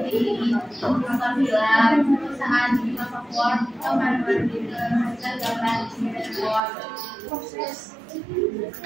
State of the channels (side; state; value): left; drops out; at 6.6 s